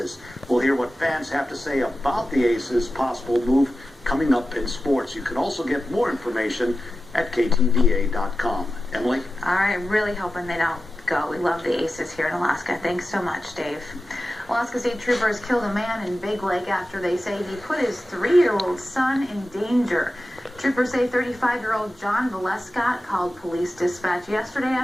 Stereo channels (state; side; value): normal; both; correlation 0.93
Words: We'll hear what fans have to say about the Aces' possible move coming up in sports. You can also get more information at KTVA.com. Emily? All right, really hoping they don't go. We love the Aces here in Alaska. Thanks so much, Dave. Alaska State Troopers killed a man in Big Lake after they say he put his 3-year-old son in danger. Troopers say 35-year-old John Valescott called police dispatch yesterday